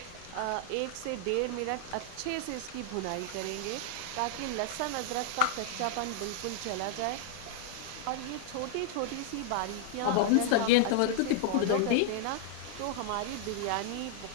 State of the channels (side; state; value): both; different; correlation -0.01